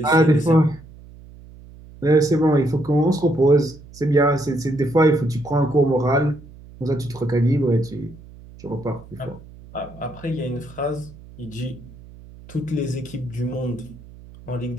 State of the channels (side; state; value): right; noise; hum, 20 dB below the sound